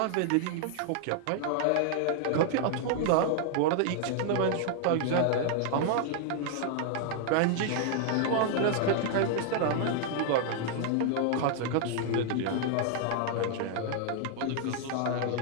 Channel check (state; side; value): different; both; correlation 0.00